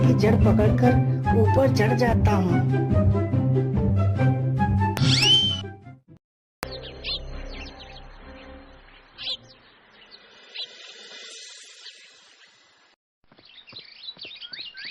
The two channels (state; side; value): identical; both; correlation 1.00